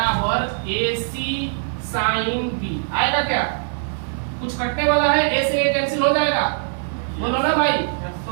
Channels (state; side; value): silent; left; digital silence